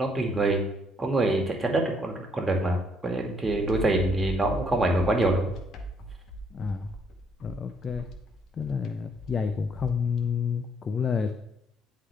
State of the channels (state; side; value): normal; both; correlation 0.69